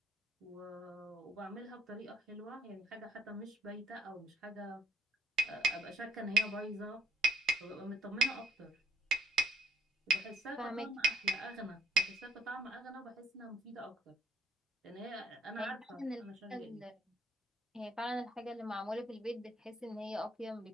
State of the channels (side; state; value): both; normal; correlation 0.62